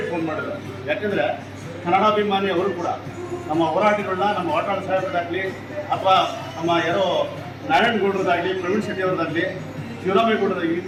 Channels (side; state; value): both; identical; correlation 1.00